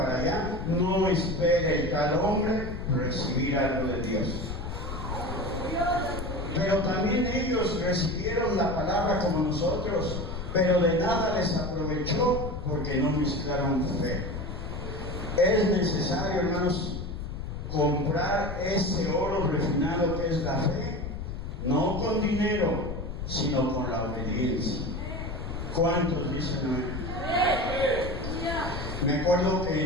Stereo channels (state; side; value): noise; left; rumble, 6 dB below the sound